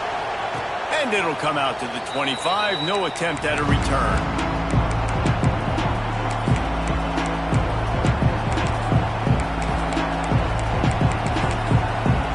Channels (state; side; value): identical; both; correlation 1.00